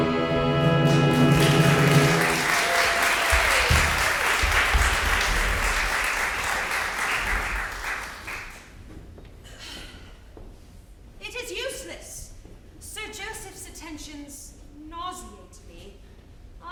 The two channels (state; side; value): identical; both; correlation 1.00